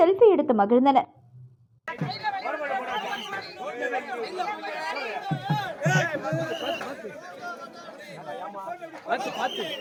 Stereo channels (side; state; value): both; identical; correlation 1.00